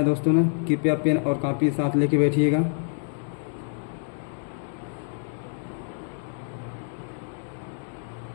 दोस्तों ने? कृपया पेन और कॉपी साथ लेके बैठिएगा।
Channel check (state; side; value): silent; right; digital silence